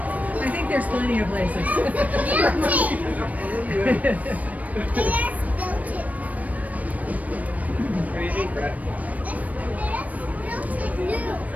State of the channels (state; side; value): late; left; 0.071 ms